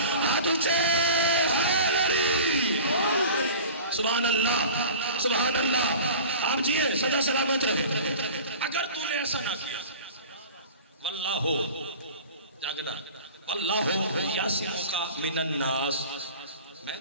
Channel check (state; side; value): inverted; both; correlation -0.40